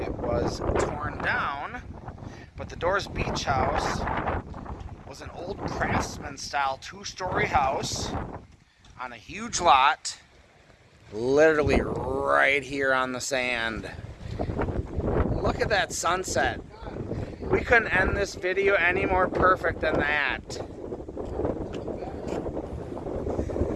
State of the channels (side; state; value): both; identical; correlation 1.00